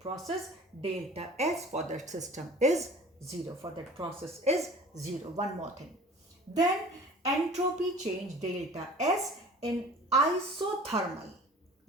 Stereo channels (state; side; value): normal; both; correlation 0.44